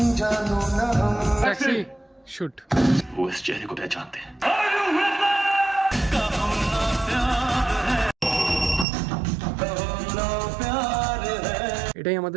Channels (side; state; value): left; drops out; at 8.8 s